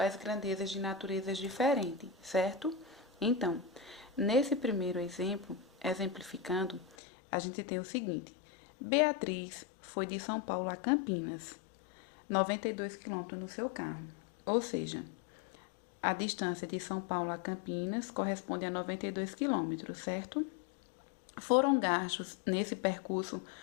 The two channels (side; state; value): right; drops out; at 7.0 s